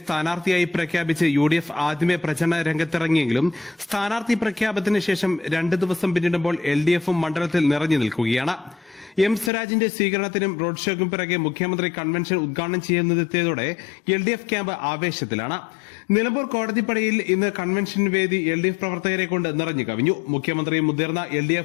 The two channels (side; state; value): right; drops out; at 9.5 s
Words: സ്ഥാനാർത്ഥിയായി പ്രഖ്യാപിച്ച് UDF ആദ്യമേ പ്രചരണ രംഗത്തിറങ്ങിയെങ്കിലും സ്ഥാനാർത്ഥി പ്രഖ്യാപനത്തിന് ശേഷം 2 ദിവസം പിന്നിടുമ്പോൾ LDFും മണ്ഡലത്തിൽ നിറഞ്ഞു നിൽക്കുകയാണ്. M സ്വരാജിന്റെ സ്വീകരണത്തിനും റോഡ് ഷോയ്ക്കും പിറകെ മുഖ്യമന്ത്രി കൺവെൻഷൻ ഉദ്ഘാടനം ചെയ്യുന്നതെത്തിയതോടെ LDF ക്യാമ്പ് ആവേശത്തിലാണ്. നിലമ്പൂർ കോടതിപ്പടിയിൽ ഇന്ന് കൺവെൻഷൻ വേദി LDF പ്രവർത്തകരെ കൊണ്ട് നിറഞ്ഞു കവിഞ്ഞു. മുഖ്യമന്ത്രിയും മുതിർന്ന